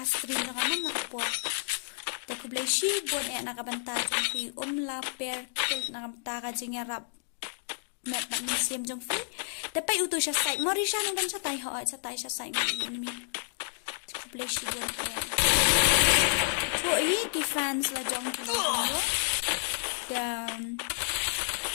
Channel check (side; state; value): right; silent; digital silence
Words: jonga nama kapo te ku bleshi bon e nakabanta ki la pair kel nakabanta ka jingarap met ba museum jong fi dapat utu siya site morisha nang dan sa tai ho sa tai siya site ni Please you don't care. So, ki fans la jong ko. Dan